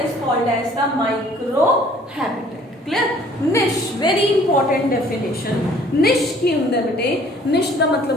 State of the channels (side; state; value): both; normal; correlation 0.56